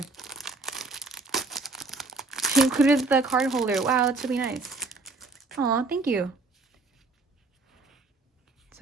She included the card holder. Wow, that's really nice. Aw, thank you.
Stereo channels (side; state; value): left; quieter; 3.6 dB